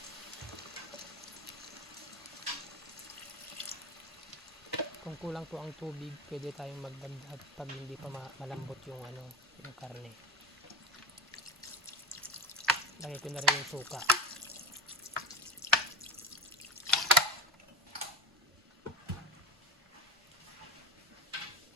Kung kulang po ang tubig, pwede tayong magdagdag pag hindi pa malambot yung yung karne. Lagay ko na rin yung suka.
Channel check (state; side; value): normal; both; correlation 0.25